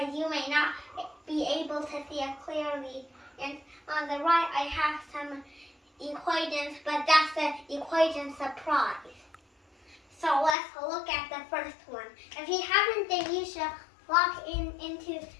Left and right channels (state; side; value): drops out; right; at 10.6 s